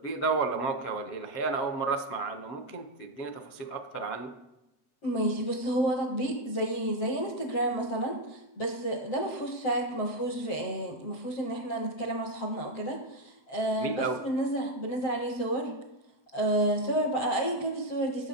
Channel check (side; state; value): right; late; 7.9 ms